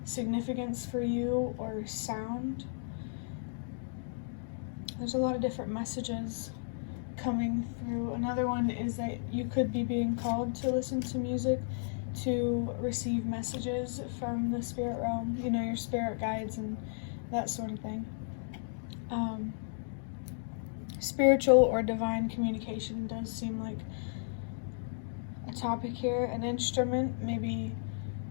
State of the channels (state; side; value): silent; right; digital silence